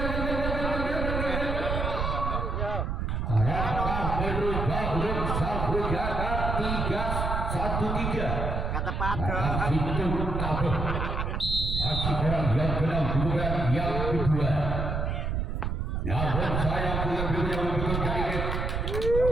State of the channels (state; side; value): noise; right; rumble, 1 dB below the sound